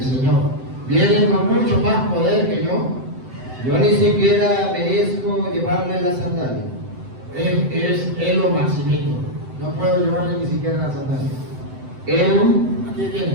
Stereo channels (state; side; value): late; left; 7.8 ms